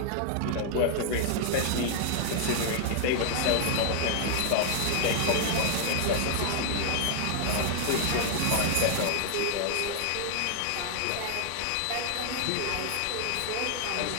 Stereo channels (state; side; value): different; both; correlation 0.00